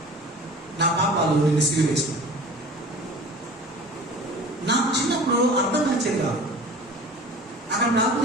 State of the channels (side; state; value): both; normal; correlation 0.41